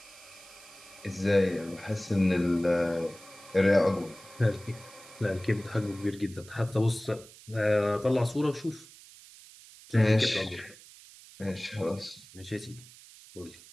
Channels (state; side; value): noise; right; hiss, 20 dB below the sound